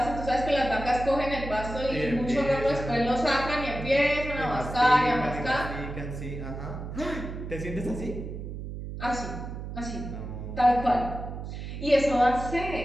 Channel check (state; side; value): noise; right; hum, 8 dB below the sound